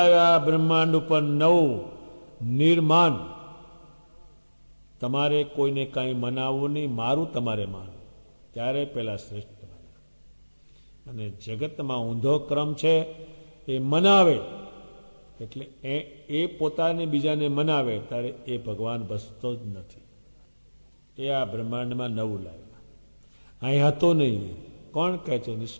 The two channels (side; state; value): both; inverted; correlation -1.00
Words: બ્રહ્માંડ ઉપર 9 નિર્માન. તમારે કોઈને કાંઈ મનાવવું નહીં, મારું તમારે માનવું, ત્યારે પેલા શ્રેષ્ઠ બન્યા. અને જગતમાં ઊંધો ક્રમ છે, એ મનાવે એટલે એ પોતાને બીજાને મનાવે, ત્યારે એ ભગવાન બસતો જ નથી. એ આ બ્રહ્માંડમાં 9 લાવ્યા. અહીં હતો નહીં. કોણ કહે છે?